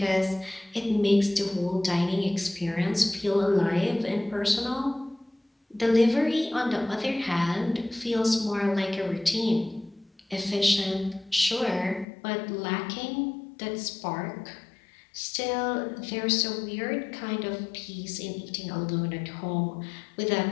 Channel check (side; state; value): right; drops out; at 12.1 s